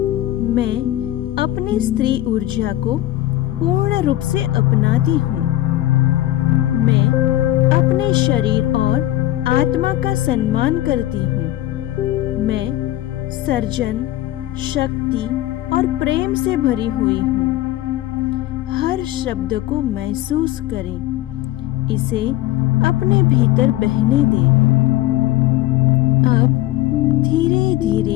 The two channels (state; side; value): quieter; right; 15.1 dB